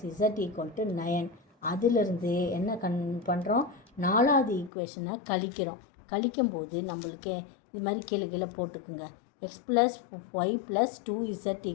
z equal to 9. அதிலிருந்து என்ன பண்ணுறோம், 4வது ஈக்குவேஷனை கழிக்கும்போது நம்மளுக்கு இது மாதிரி கீழே போட்டுக்குங்க. X plus y plus 2z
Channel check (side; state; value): right; drops out; at 4.7 s